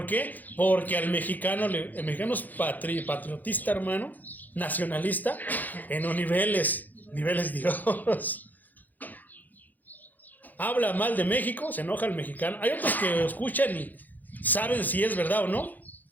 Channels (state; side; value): late; right; 0.083 ms